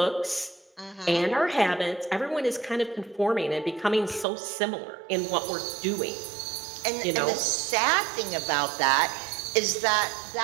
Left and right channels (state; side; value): drops out; left; at 4.2 s